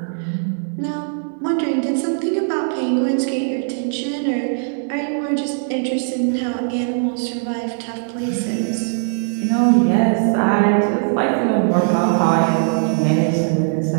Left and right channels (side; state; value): left; silent; digital silence